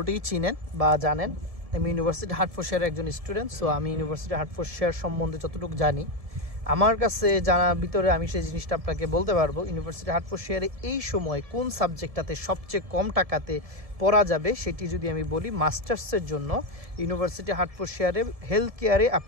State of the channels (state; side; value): late; left; 1.7 ms